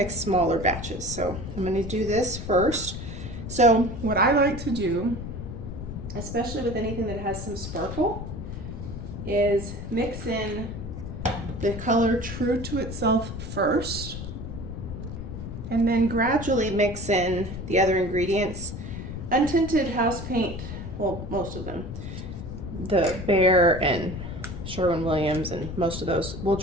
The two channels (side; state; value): left; noise; rumble, 8 dB below the sound